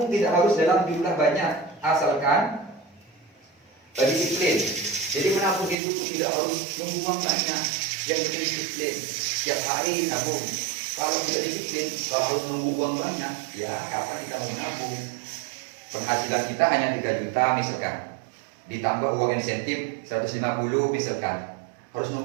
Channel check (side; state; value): left; drops out; at 5.8 s